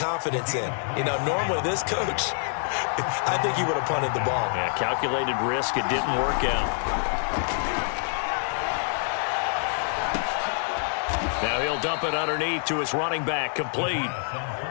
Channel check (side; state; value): right; silent; 60 dB below the other